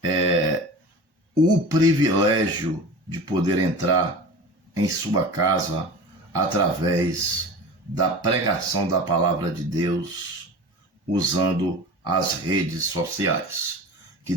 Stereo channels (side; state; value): left; late; 1.1 ms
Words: o privilégio de poder entrar em sua casa através da pregação da palavra de Deus, usando as redes sociais. Que